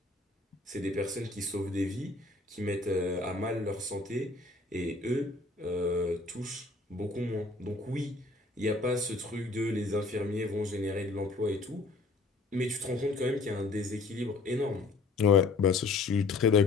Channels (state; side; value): quieter; right; 3.6 dB